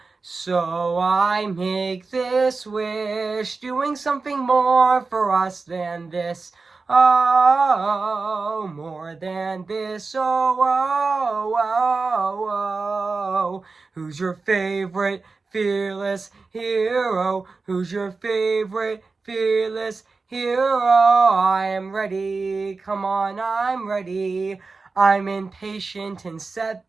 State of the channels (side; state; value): left; quieter; 4.1 dB